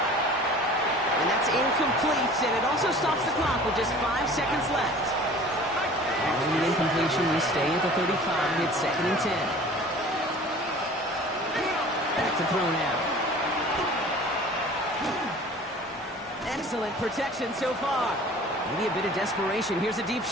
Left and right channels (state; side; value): normal; both; correlation 0.45